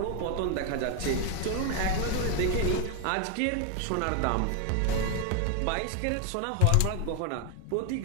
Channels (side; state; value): both; different; correlation 0.01